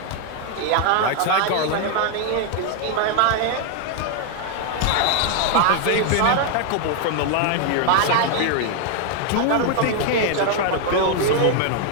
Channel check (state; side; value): different; both; correlation 0.01